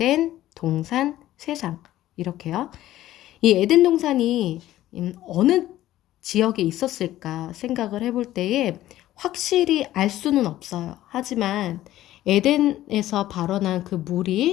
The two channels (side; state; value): right; quieter; 14.3 dB